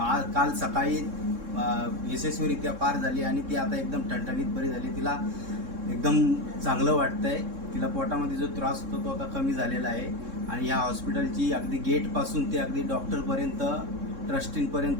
काल सकाळी यशस्वीरित्या पार झाली आणि ती आता एकदम ठणठणीत बरी झाली. तिला एकदम चांगलं वाटतं आहे. तिला पोटामध्ये जो त्रास होतो तो आता कमी झालेला आहे. आणि ह्या हॉस्पिटलची अगदी गेटपासून ते अगदी डॉक्टरपर्यंत,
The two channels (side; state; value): left; late; 3.6 ms